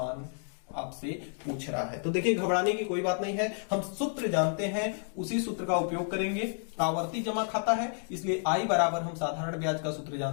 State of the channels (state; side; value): silent; right; 57 dB below the other